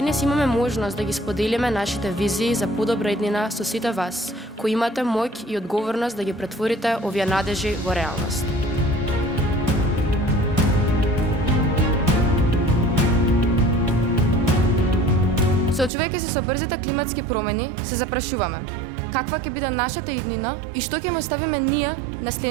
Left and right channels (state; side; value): drops out; left; at 15.9 s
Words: денес имаме можност да ги споделиме нашите визии за подобра иднина со сите вас, кои имате моќ и одговорност да ги претворите овие надежи во реалност. Соочувајќи се со брзите климатски промени, се запрашуваме каква ќе биде нашата иднина и што ќе му оставиме ние на